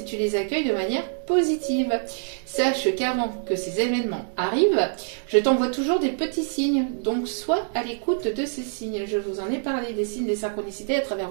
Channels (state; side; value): silent; left; digital silence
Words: tu les accueilles de manière positive. Sache qu'avant que ces événements arrivent, je t'envoie toujours des petits signes. Donc, sois à l'écoute de ces signes. Je vous en ai parlé des signes des synchronicités à travers